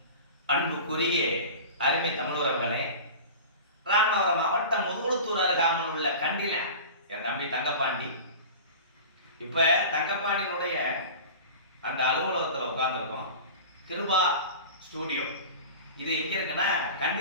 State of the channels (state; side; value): inverted; both; correlation -0.35